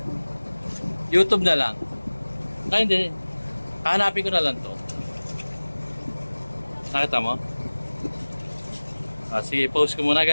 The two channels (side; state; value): both; inverted; correlation -1.00